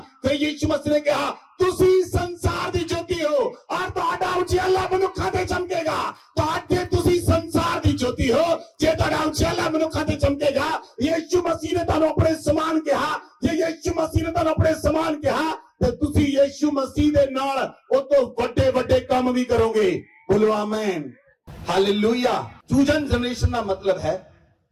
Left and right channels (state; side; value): identical; both; correlation 1.00